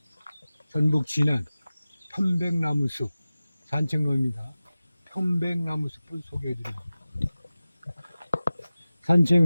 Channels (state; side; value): inverted; both; correlation -0.96